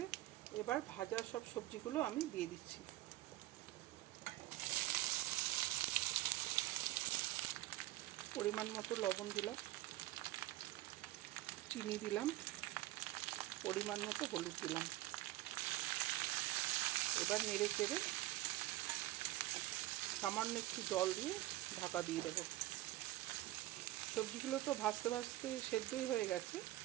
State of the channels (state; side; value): quieter; left; 16.6 dB